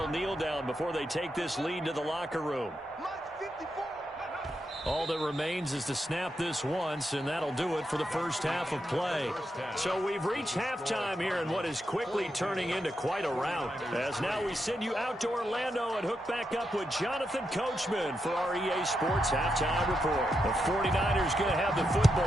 kneel down before they take this lead to the locker room. All that remains is to snap this once, and that'll do it for the first half of play. So we've reached halftime here in what is quickly turning into quite a rout. As now we send you out to Orlando and hook back up with Jonathan Coachman for our EA Sports Halftime Report. The 49ers going to have the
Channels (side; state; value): both; normal; correlation 0.84